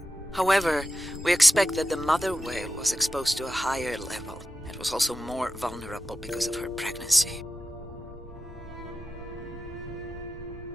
However, we expect that the mother whale was exposed to a higher level and was also more vulnerable because of her pregnancy.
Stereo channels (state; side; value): normal; both; correlation 0.92